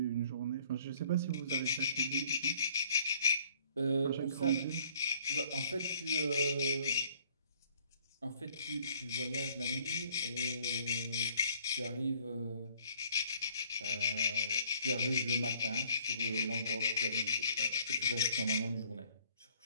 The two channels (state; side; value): inverted; both; correlation -0.60